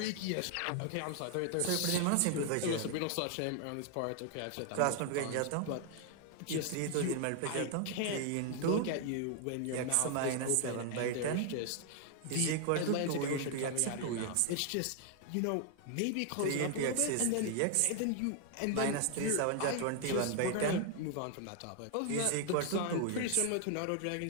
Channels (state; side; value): different; both; correlation 0.00